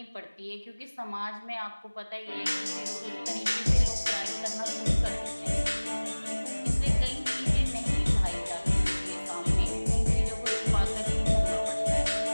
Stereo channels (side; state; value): both; inverted; correlation -1.00